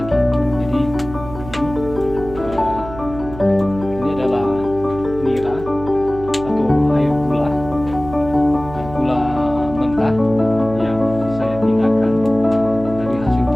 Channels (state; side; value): noise; right; hum, 13 dB below the sound